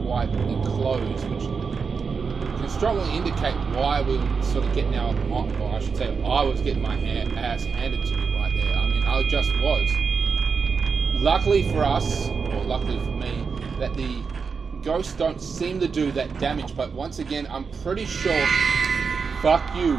quite enclosed, which can strongly indicate why we were sort of getting our, or I should say, I was getting my ass handed to me right there. I mean, I just was. Luckily for us, or luckily for me, that the ghosts don't seem to do that damage, but once again, I'm pretty sure, fuck you,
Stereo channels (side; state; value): left; quieter; 5.4 dB